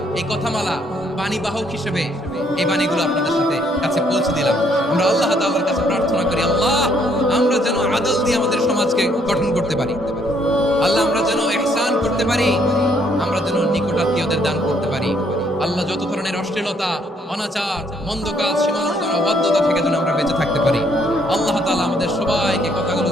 এই কথামালা, বাণী বাহক হিসেবে এই বাণীগুলো আপনাদের সাথে কাছে পৌঁছে দিলাম। আমরা আল্লাহ তাআলার কাছে প্রার্থনা করি, আল্লাহ আমরা যেন আদল দিয়ে আমাদের সমাজকে গঠন করতে পারি। আল্লাহ আমরা যেন ইহসান করতে পারি, আমরা যেন নিকটাত্মীয়দের দান করতে পারি। আল্লাহ যত ধরনের অশ্লীলতা, অনাচার, মন্দ কাজ, সীমালঙ্ঘন, অবাধ্যতা থেকে যেন আমরা বেঁচে থাকতে পারি। আল্লাহ তাআলা আমাদের সবাইকে কথাগুলো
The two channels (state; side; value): normal; both; correlation 0.68